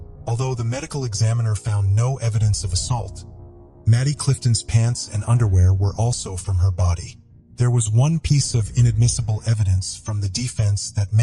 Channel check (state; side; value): identical; both; correlation 1.00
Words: Although the medical examiner found no evidence of assault, Maddie Clifton's pants and underwear were also from her body. There was one piece of inadmissible evidence from the defense that